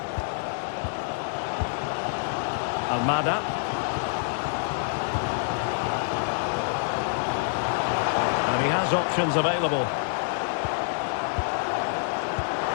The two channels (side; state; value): right; silent; digital silence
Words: Almada. And he has options available.